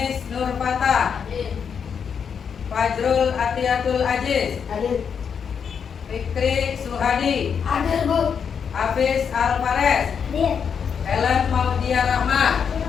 Nur Fatah. Fajrul Atiatul Aziz. Fikri Suhadi. Hafiz Al-Fares. Helen Maudia Rahma.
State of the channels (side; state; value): right; quieter; 6.9 dB